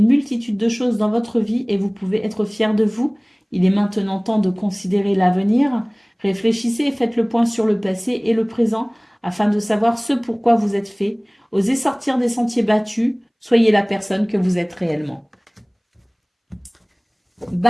multitude de choses dans votre vie et vous pouvez être fier de vous. Il est maintenant temps de considérer l'avenir. Réfléchissez et faites le point sur le passé et le présent afin de savoir ce pourquoi vous êtes fait. Osez sortir des sentiers battus. Soyez la personne que vous êtes réellement.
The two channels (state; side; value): identical; both; correlation 1.00